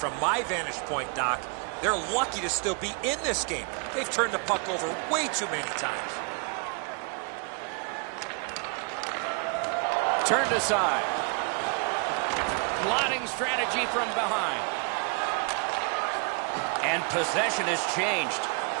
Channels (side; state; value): left; quieter; 36.8 dB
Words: my vantage point, Doc, they're lucky to still be in this game. They've turned the puck over way too many times. Turned aside. Plotting strategy from behind. And possession has changed.